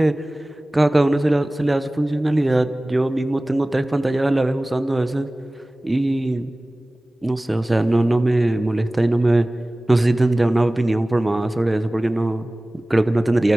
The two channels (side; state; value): both; normal; correlation 0.98